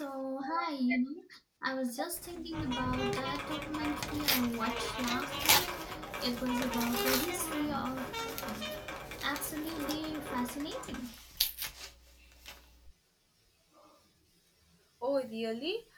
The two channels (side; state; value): both; identical; correlation 1.00